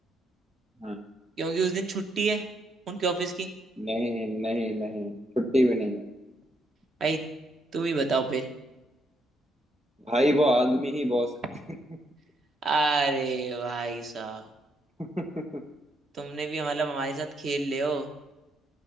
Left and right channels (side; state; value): both; normal; correlation 0.76